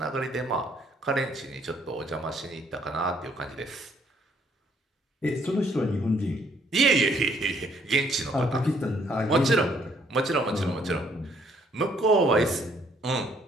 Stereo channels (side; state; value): both; normal; correlation 0.66